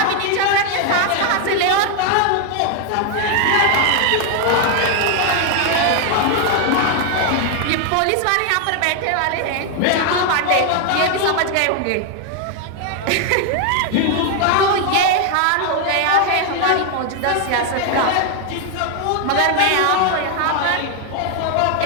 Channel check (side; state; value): both; different; correlation 0.01